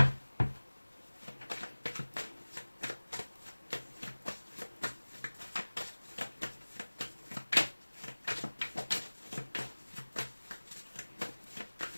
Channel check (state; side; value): inverted; both; correlation -1.00